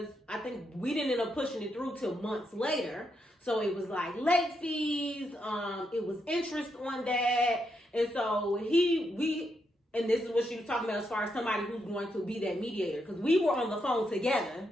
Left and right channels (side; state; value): both; normal; correlation 0.81